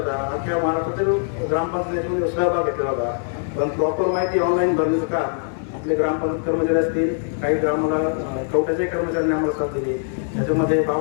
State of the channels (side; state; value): right; silent; 64 dB below the other